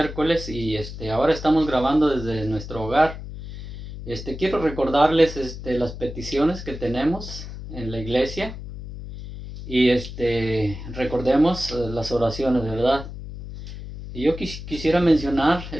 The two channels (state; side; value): noise; left; hum, 10 dB below the sound